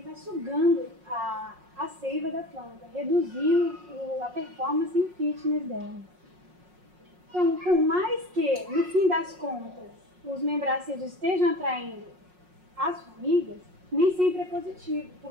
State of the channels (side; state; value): left; late; 5.5 ms